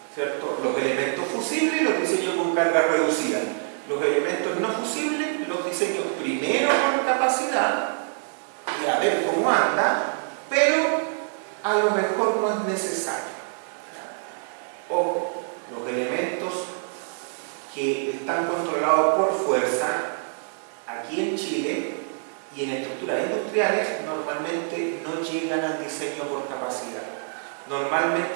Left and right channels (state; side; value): silent; left; 61 dB below the other